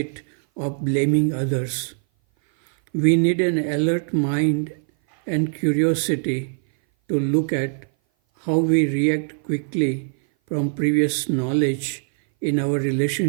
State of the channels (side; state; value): left; silent; 58 dB below the other